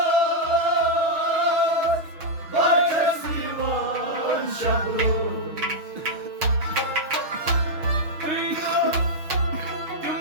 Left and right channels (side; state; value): left; late; 6.3 ms